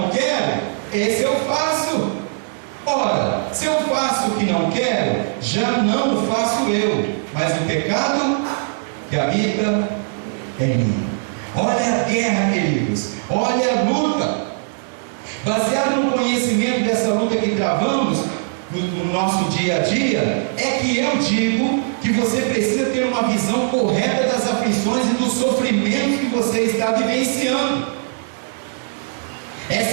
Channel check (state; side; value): silent; left; digital silence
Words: quero, esse eu faço. Ora, se eu faço o que não quero, já não o faço eu, mas o pecado que habita em mim. Olha a guerra, queridos, olha a luta. Baseado no conhecimento dessa luta que travamos no nosso dia a dia, é que eu digo que você precisa ter uma visão correta das aflições e dos sofrimentos que você está vivenciando.